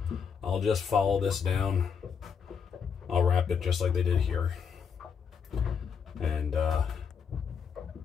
I'll just follow this down. I'll wrap it just like they did here. And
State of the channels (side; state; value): right; quieter; 6.6 dB